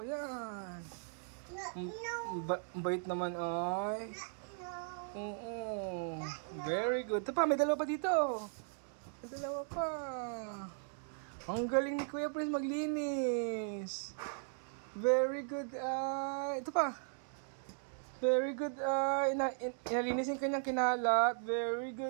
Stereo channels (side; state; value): left; silent; digital silence